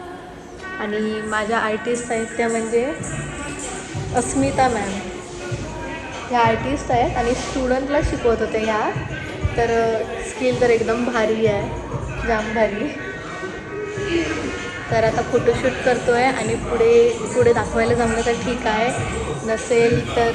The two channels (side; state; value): both; identical; correlation 1.00